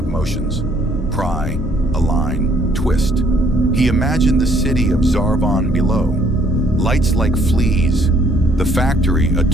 motions. Pry, align, twist. He imagined the city of Zarvan below, lights like fleas, the factory a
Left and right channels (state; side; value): normal; both; correlation 0.64